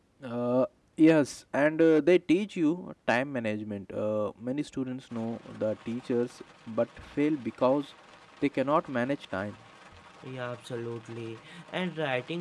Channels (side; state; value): both; identical; correlation 1.00